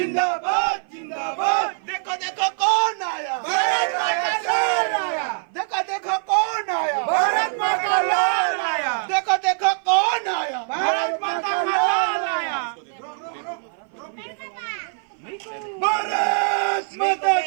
जिंदाबाद देखो देखो कौन आया भारत माता शेर आया देखो देखो कौन आया भारत माता लाल आया देखो देखो कौन आया भारत माता लाल आया भारत माता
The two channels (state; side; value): silent; left; 56 dB below the other